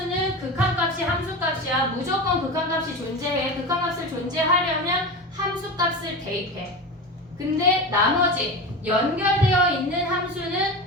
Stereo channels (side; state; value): both; normal; correlation 0.26